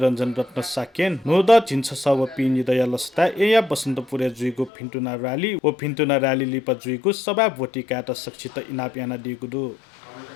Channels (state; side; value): drops out; right; at 4.7 s